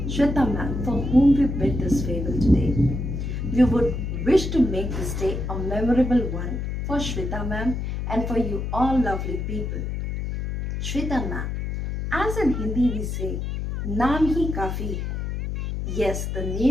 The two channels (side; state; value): left; noise; hum, 3 dB below the sound